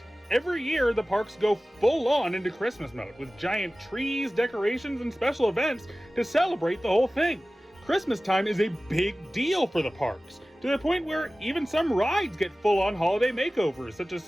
Every year, the parks go full on into Christmas mode with giant trees, decorations, and special events to celebrate the whole thing. Christmas time is a big deal for the parks, to the point where even some rides get full on holiday makeovers, such as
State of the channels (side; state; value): both; normal; correlation 0.97